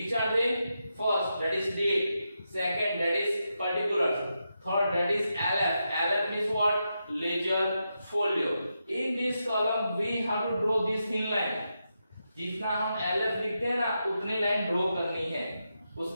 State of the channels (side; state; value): both; inverted; correlation -0.86